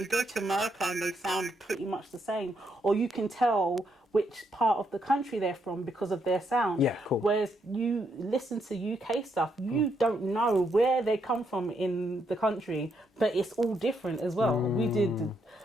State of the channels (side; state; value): both; normal; correlation 0.77